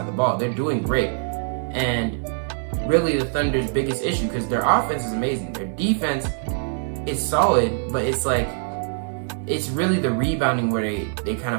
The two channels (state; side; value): silent; left; digital silence